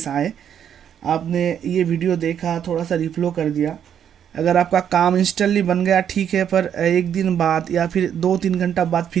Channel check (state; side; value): quieter; left; 9.0 dB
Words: आए, आपने ये वीडियो देखा, थोड़ा सा रिफ्लो कर दिया, अगर आपका काम इंस्टेंटली बन गया ठीक है, पर एक दिन बाद या फिर 2-3 घंटा बाद